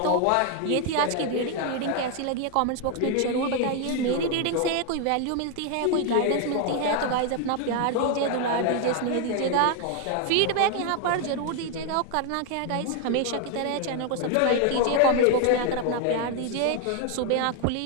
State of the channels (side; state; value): both; different; correlation 0.01